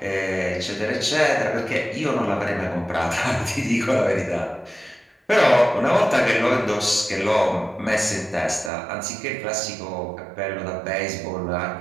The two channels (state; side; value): drops out; left; at 8.7 s